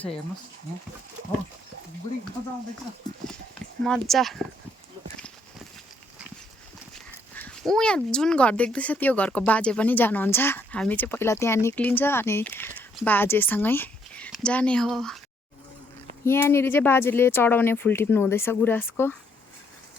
हेर्नुहोस् हो बुढी मजा आउँदैछ, मजा। यहाँ जुन घर देख्दैछ त्यो घरको बाजे पनि जानुहुन्छ। हामी चाहिँ पहिला त्यहाँ निक्लिन्छ अनि बाजेसँगै जाने हो। यहाँनिर चाहिँ बाजेले चढाउने फुल टिप्नु हुँदैछ गुराँसको।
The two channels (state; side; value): normal; both; correlation 0.70